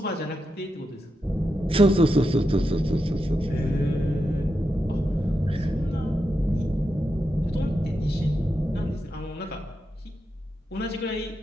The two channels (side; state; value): both; normal; correlation 0.87